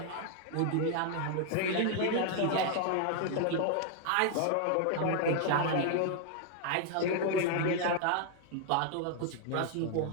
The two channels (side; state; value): both; different; correlation 0.00